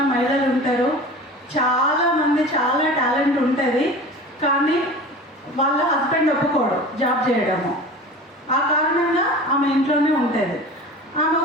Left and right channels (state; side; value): normal; both; correlation 0.37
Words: మహిళలు ఉంటారు, చాలామంది చాలా టాలెంట్ ఉంటుంది, కానీ వాళ్ళ హస్బెండ్ ఒప్పుకోడు జాబ్ చేయడము. ఆ కారణంగా ఆమె ఇంట్లోనే ఉంటుంది. ఆమె